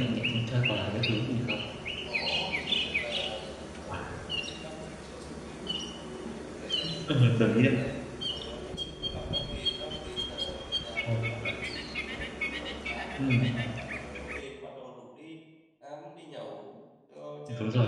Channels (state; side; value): identical; both; correlation 1.00